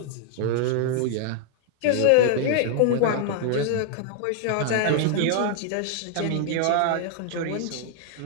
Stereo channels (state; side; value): different; both; correlation 0.00